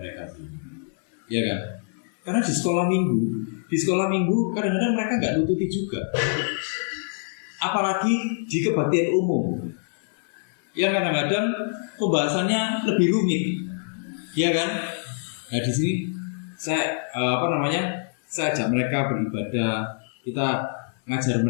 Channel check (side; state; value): right; silent; 62 dB below the other